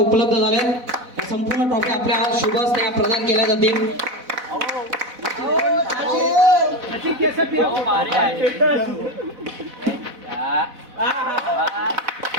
झाल्या. संपूर्ण ट्रॉफी आपल्या शुभ हस्ते प्रदान केल्या जातील.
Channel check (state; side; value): late; left; 4.0 ms